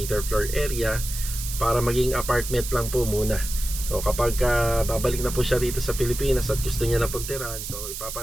floor area para maging apartment lang po muna. So kapag babalik na po siya rito sa Pilipinas at gusto niya na pagtirahan, so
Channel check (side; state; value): right; noise; hiss, 7 dB below the sound